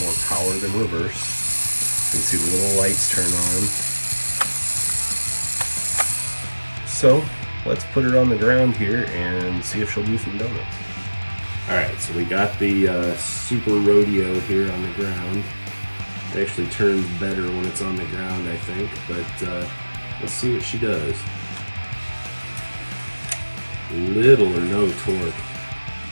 more power than reverse. You can see the little lights turn on. So let's put her on the ground here and see if she'll do some donuts. Alright, so we got the Super Rodeo here on the ground. It actually turns better when it's on the ground, I think, but let's see what she does. Little or no torque.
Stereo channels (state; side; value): inverted; both; correlation -1.00